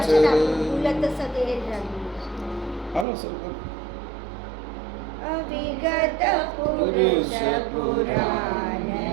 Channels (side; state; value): left; drops out; at 3.1 s